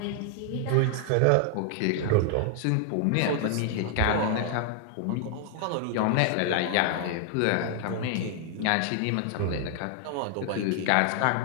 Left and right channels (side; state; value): both; different; correlation 0.00